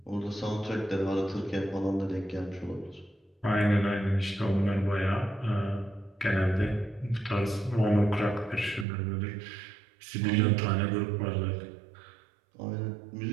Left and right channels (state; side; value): drops out; left; at 8.8 s